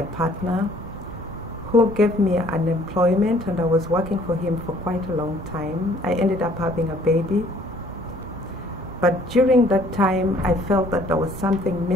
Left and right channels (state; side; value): normal; both; correlation 0.58